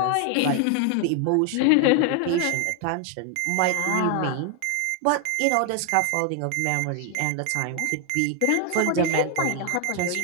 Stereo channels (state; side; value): different; both; correlation 0.00